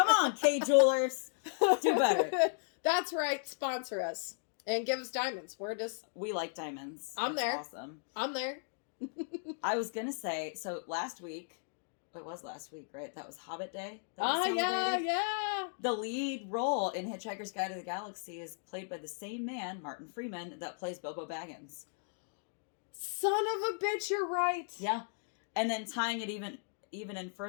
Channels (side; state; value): right; silent; digital silence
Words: on, K Jewelers. Do better. That's right. Sponsor us. And give us diamonds. We like diamonds. I'm That's there. Awesome. I'm there. I was going to say, so last week, it was last week, right? That was Hobbit Day. Yeah. The lead role in Hitchhiker's Guide to the Galaxy is played by the same man, Martin Freeman, that plays Bilbo Baggins. Son of a bitch, you're right. Yeah. And then tying it even in